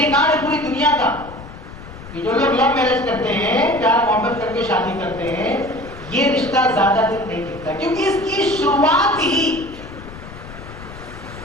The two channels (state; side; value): noise; left; rumble, 15 dB below the sound